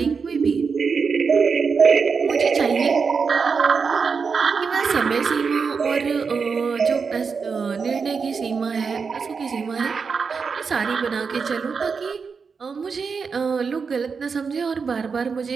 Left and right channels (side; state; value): left; quieter; 5.4 dB